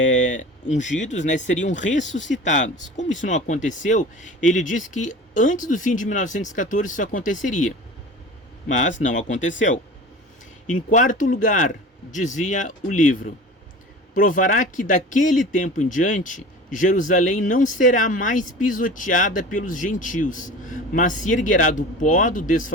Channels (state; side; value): normal; both; correlation 0.37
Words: ungidos, né, seriam ressuscitados. Como isso não aconteceu, ele disse que antes do fim de 1914 isso aconteceria. Mas não aconteceu. Em quarto lugar, dizia o livro, provará que daquele tempo em diante, Jerusalém não será mais pisoteada pelos gentios, mas se erguerá do pó do